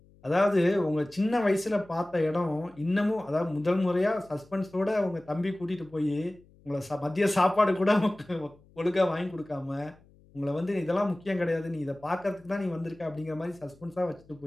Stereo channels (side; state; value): left; noise; hum, 28 dB below the sound